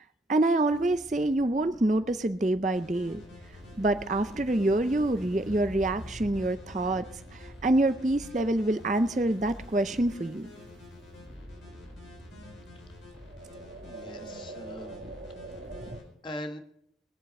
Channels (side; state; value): both; normal; correlation 0.69